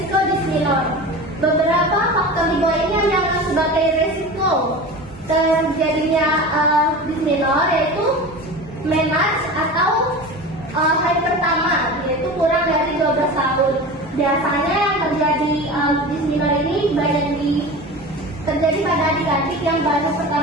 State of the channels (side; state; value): both; normal; correlation 0.32